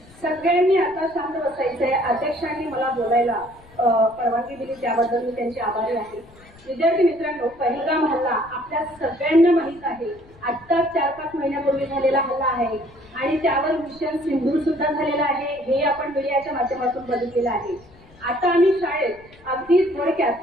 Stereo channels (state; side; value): noise; left; rumble, 25 dB below the sound